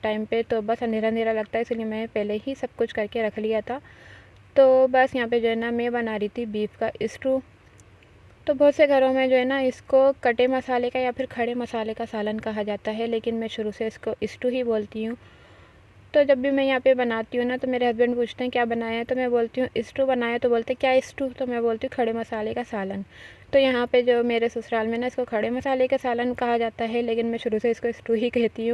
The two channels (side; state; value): both; identical; correlation 1.00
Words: पे, तो बस अंधेरा अंधेरा लगता है, इसलिए मैंने पहले ही सब कुछ करके रख लिया था। तो बस यहाँ पे जो है ना मैं बना रही थी बीफ का स्टू। तो बहुत से घरों में जो है ना इसको कटे मसाले का या फिर खड़े मसाले का सालन कहा जाता है, लेकिन मैं शुरू से इसको स्टू ही बोलती हूँ। तो जब भी मैं यहाँ पे बनाती हूँ ना तो मेरे हस्बैंड पूछते हैं क्या बनाया है, तो मैं बोलती हूँ स्टू बनाया, तो बोलते हैं क्या स्टू, तो मैं बोलती हूँ खड़े मसाले का सालन। तो यहाँ पे जो मेरे ससुराल में ना इसको खड़े मसाले का सालन कहा जाता है, लेकिन मैं शुरू से इसको स्टू ही कहती